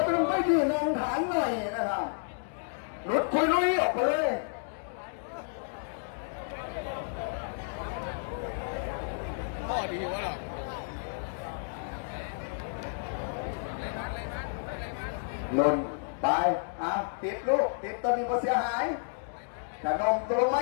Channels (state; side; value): silent; right; digital silence